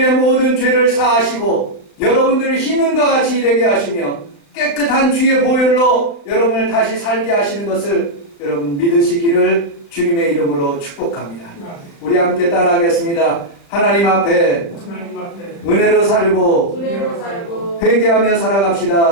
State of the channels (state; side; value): late; right; 36 ms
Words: 모든 죄를 사하시고 여러분들을 흰눈과 같이 되게 하시며 깨끗한 주의 보혈로 여러분을 다시 살게 하시는 것을 여러분 믿으시기를 주님의 이름으로 축복합니다. 우리 함께 따라하겠습니다. 하나님 앞에 은혜로 살고 회개하며